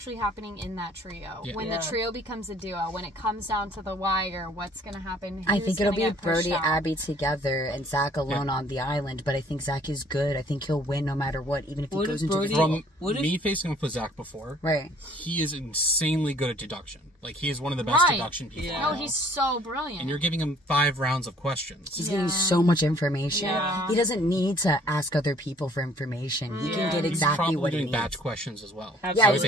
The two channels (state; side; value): normal; both; correlation 0.58